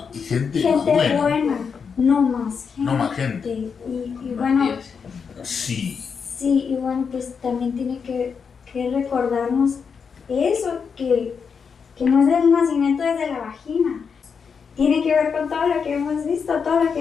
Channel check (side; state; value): right; quieter; 6.1 dB